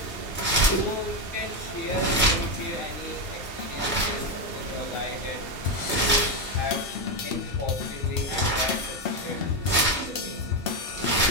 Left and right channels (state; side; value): normal; both; correlation 0.08